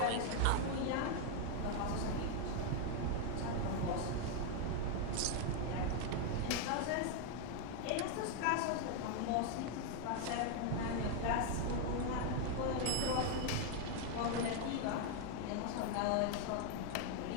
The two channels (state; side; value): different; both; correlation 0.01